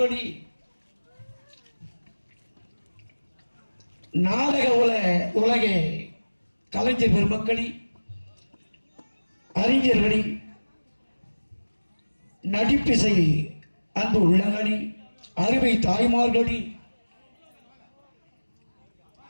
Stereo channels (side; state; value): both; inverted; correlation -1.00